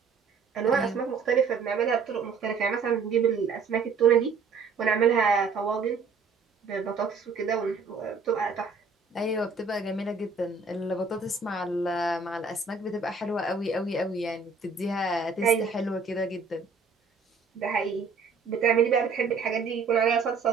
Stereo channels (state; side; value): quieter; left; 4.9 dB